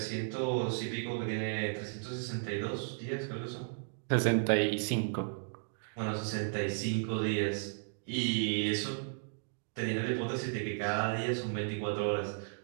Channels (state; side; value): silent; left; digital silence